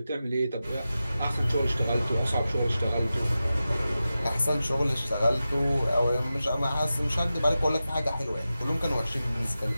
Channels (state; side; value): inverted; both; correlation -0.93